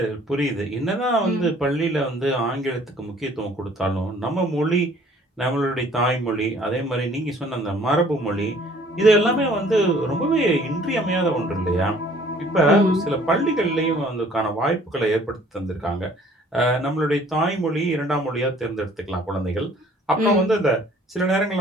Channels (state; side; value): normal; both; correlation 0.56